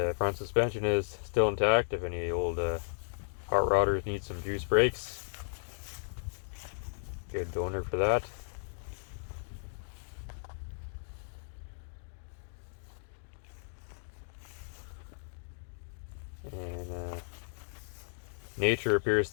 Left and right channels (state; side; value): silent; right; digital silence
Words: front suspension is still intact. If any old hot rodders need some juice brakes, good donor for that. And nature appears